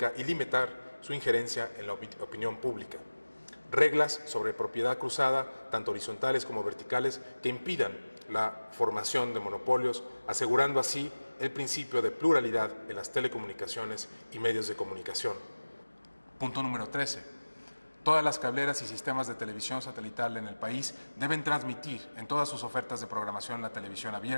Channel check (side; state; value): both; inverted; correlation -1.00